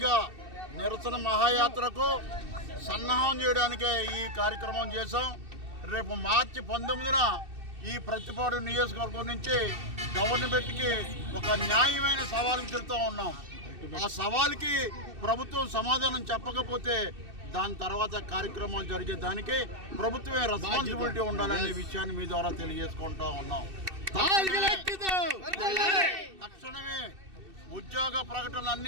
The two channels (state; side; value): late; left; 2.6 ms